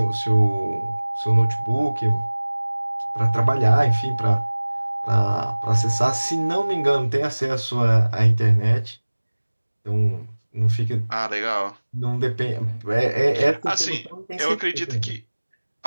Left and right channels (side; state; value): both; inverted; correlation -1.00